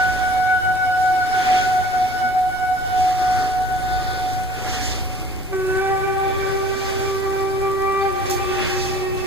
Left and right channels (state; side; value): normal; both; correlation 0.48